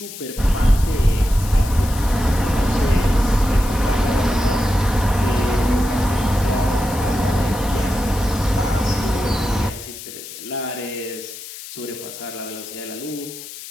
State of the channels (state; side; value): noise; left; hiss, 13 dB below the sound